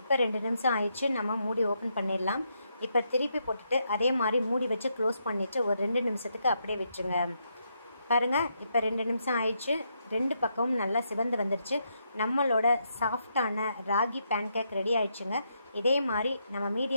2 நிமிஷம் ஆயிடுச்சு. நம்ம மூடி ஓப்பன் பண்ணிடலாம். இப்போ திருப்பி போட்டுட்டு அதே மாதிரி மூடி வச்சு க்ளோஸ் பண்ணிவிட்டு ஒரு 2 நிமிஷத்துக்கு அப்படியே விட்டுருங்க. பாருங்கள், இப்போ 2 நிமிஷம் ஆயிடுச்சு. 2 பக்கமும் நல்லா சிவந்து வந்துடுச்சு. நம்மளோட சாஃப்டான ராகி பேன்கேக் ரெடி ஆயிடுச்சுங்க. இதே மாதிரி நம்ம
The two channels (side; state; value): both; inverted; correlation -0.79